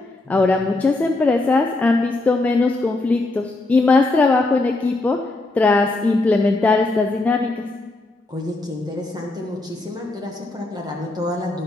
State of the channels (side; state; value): right; quieter; 3.0 dB